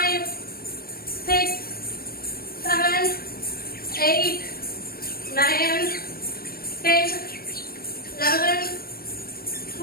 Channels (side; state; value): right; late; 0.44 ms